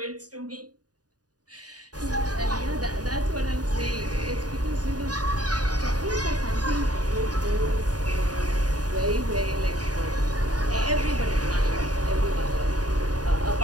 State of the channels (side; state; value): left; late; 0.68 ms